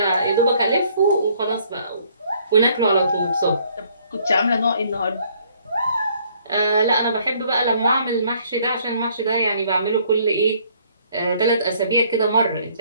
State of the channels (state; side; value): inverted; both; correlation -0.63